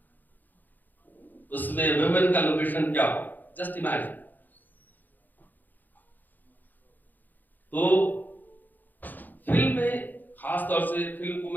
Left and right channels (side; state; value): right; late; 0.085 ms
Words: उसमें वुमेन का लोकेशन क्या होगा, जस्ट इमेजिन। तो फिल्म में खास तौर से फिल्म को